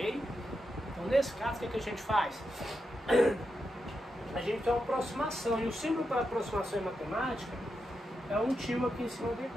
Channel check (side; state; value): both; normal; correlation 0.86